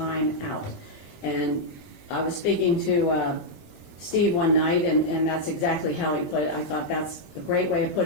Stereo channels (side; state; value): right; late; 20 ms